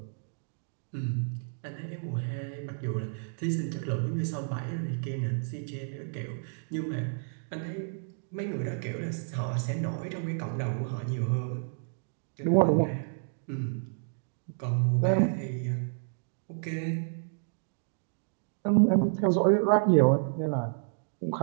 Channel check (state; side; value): silent; left; digital silence